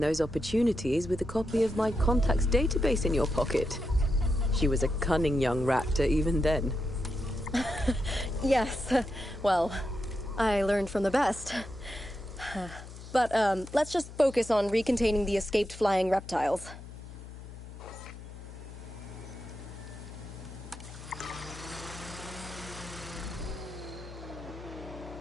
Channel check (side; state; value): left; noise; hum, 14 dB below the sound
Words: opportunities with a copy of my contacts database in your pocket. She was a cunning young raptor even then. Yes, well, I learned from the best. But let's just focus on recontaining the escaped flying reptiles.